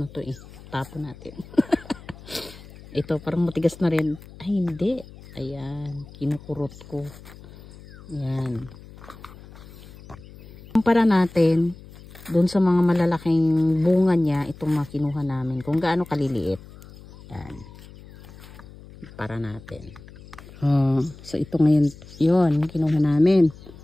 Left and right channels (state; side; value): noise; left; hum, 19 dB below the sound